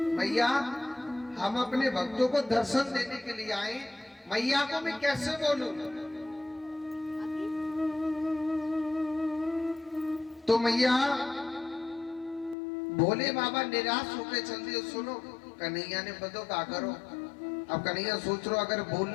मैया हम अपने भक्तों को दर्शन देने के लिए आए, मैया को मैं कैसे बोलूं। तो मैया भोले बाबा निराश होकर चल दिए। सुनो कन्हैया ने बतो क्या करो। अब कन्हैया सोच रो अगर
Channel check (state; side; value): drops out; right; at 12.6 s